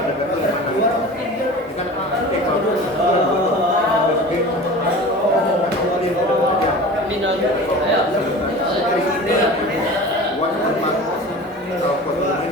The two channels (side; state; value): both; normal; correlation 0.37